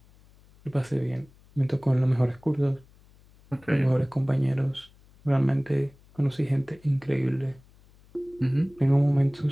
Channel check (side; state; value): left; noise; hum, 28 dB below the sound